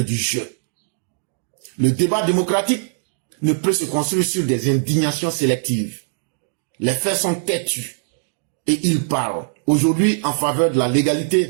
du jeu. Le débat démocratique ne peut se construire sur des indignations sélectives. Les faits sont têtus et ils parlent aujourd'hui en faveur de la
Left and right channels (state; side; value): silent; left; digital silence